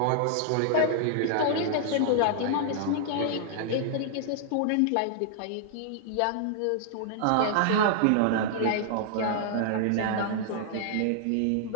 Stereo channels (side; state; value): both; different; correlation -0.01